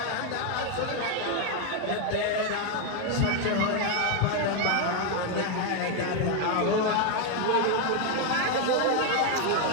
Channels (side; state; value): both; different; correlation 0.01